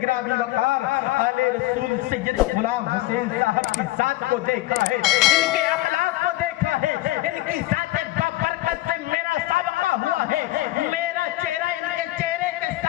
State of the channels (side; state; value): right; quieter; 17.6 dB